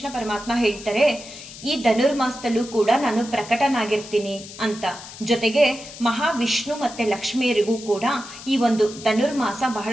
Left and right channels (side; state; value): left; noise; hiss, 15 dB below the sound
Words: ಪರಮಾತ್ಮ ಹೇಳ್ತಾರೆ, ಈ ಧನುರ್ಮಾಸದಲ್ಲೂ ಕೂಡ ನಾನು ಪ್ರಕಟನಾಗಿರ್ತೀನಿ ಅಂತ. ಜೊತೆಗೆ ಮಹಾವಿಷ್ಣು ಮತ್ತೆ ಲಕ್ಷ್ಮಿಯರಿಗೂ ಕೂಡ ಈ ಒಂದು ಧನುರ್ಮಾಸ